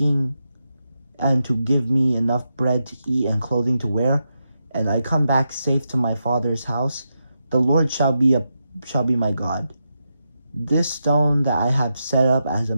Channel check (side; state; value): both; inverted; correlation -0.86